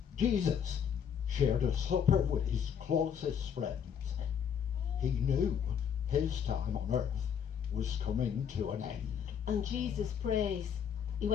Jesus shared a supper with his closest friends. He knew his time on earth was coming to an end. And Jesus prays. He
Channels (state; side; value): quieter; right; 7.9 dB